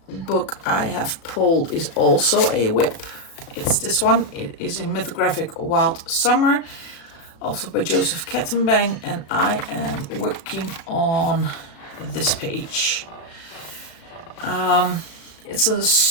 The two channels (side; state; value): right; late; 36 ms